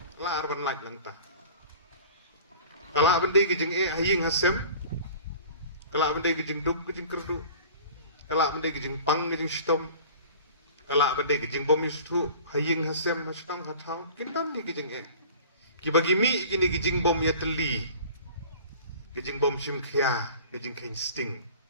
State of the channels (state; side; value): inverted; both; correlation -0.43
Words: la arban lag lanta kala bende gijing haying hasem kala bende gijing duk gijing kerdu kala bende gijing pang gijing stom kala bende gijing bom istu haying hasem mashtang hathau kintan ni gijing kibagi mi gini gijing bom ya teli gijing bom sim khia gijing kain sting